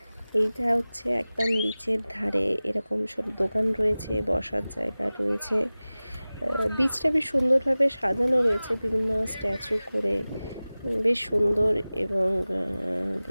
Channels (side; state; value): both; inverted; correlation -0.98